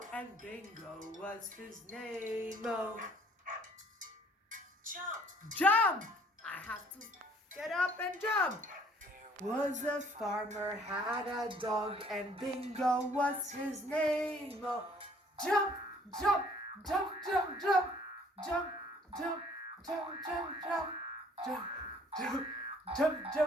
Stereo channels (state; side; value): normal; both; correlation 0.58